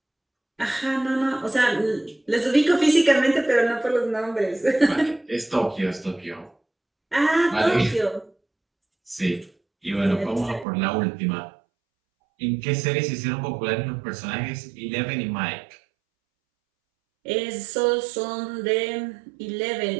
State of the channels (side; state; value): left; drops out; at 10.7 s